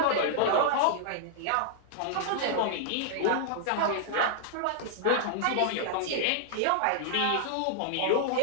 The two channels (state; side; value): different; both; correlation -0.01